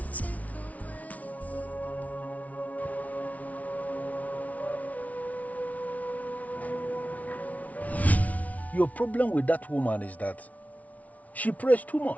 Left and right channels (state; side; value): late; right; 0.070 ms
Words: take Your problem with that woman is that she prays too